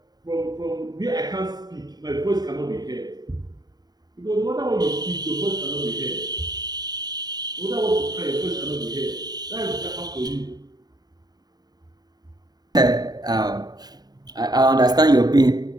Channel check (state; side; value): late; left; 0.19 ms